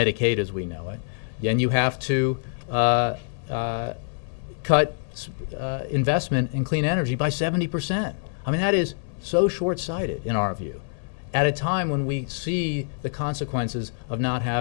as we know it, and you have to cut investment in clean energy by 70%. I mean, that is so short-sighted in our view, at a time when we see the consequences of not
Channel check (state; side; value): silent; right; digital silence